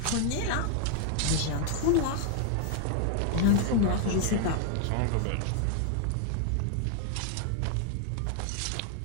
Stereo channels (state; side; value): different; both; correlation 0.00